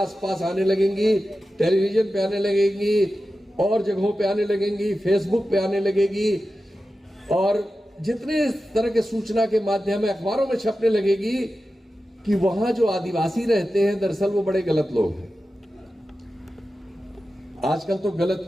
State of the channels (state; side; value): normal; both; correlation 0.93